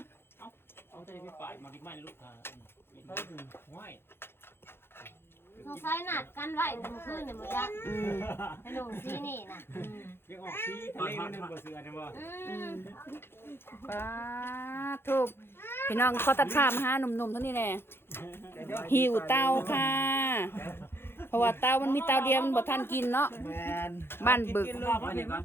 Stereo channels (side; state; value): right; late; 0.11 ms